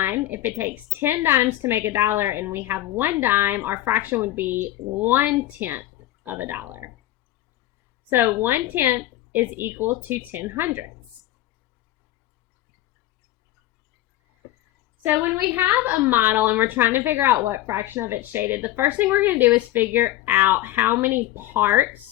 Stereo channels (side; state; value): right; quieter; 14.7 dB